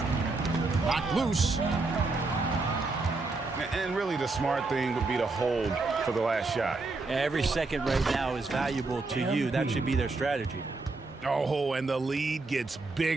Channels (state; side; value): quieter; left; 3.5 dB